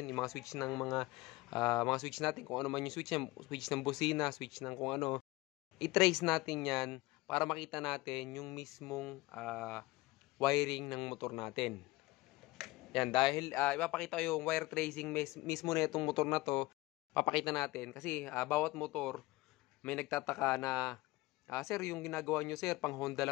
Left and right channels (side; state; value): right; quieter; 20.5 dB